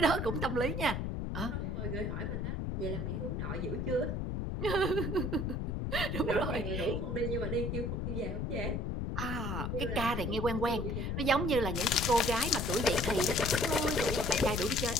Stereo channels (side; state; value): left; noise; rumble, 1 dB below the sound